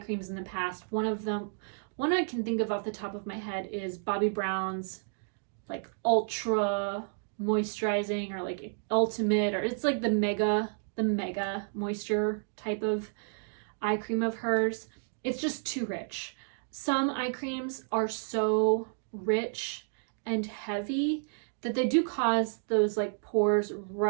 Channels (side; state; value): left; silent; digital silence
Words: in the past. One I can think of off the top of my head is Bobbi Brown's like ultra moisturizing, or like ultimate, or it's like the mega moisture type of eye cream of hers. It's just too rich. Some eye creams are so rich and heavy that they do cause those like pores